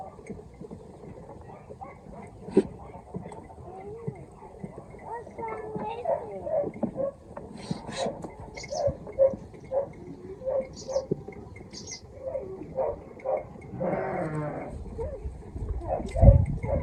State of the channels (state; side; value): identical; both; correlation 1.00